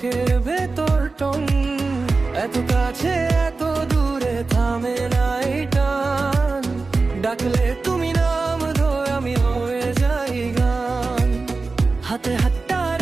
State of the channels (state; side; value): quieter; left; 3.9 dB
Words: ভেতর টন। এত কাছে এত দূরে থামে না এই টান, ডাকলে তুমি নাম ধরে আমি হয়ে যাই গান। হাতে হাতটা